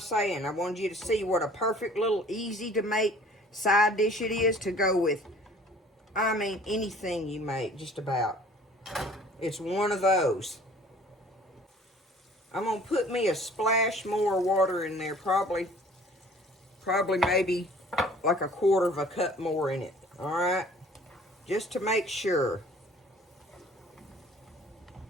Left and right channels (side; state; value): both; normal; correlation 0.51